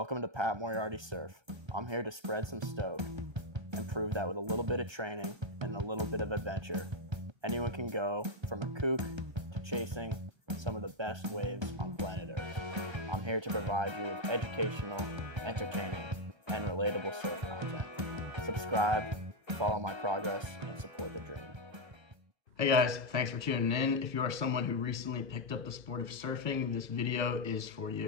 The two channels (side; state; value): left; late; 1.3 ms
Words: to Pat Moriarty Surf. I'm here to spread some stoke and prove that with a little bit of training and a little bit of adventure, anyone can go from a kook to chasing some of the best waves on planet Earth. I'm here to provide you with educational, entertaining, and relatable surf content. Subscribe, follow my progress, and support the dream. Hey guys, thanks for tuning in. If you are someone who recently picked up the sport of surfing, this video is for